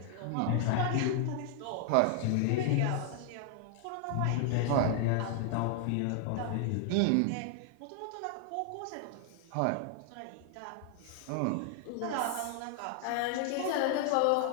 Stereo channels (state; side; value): different; both; correlation 0.00